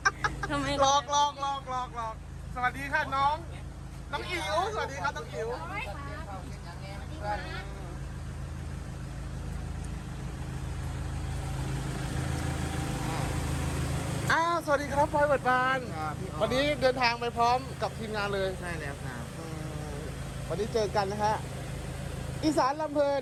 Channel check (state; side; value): identical; both; correlation 1.00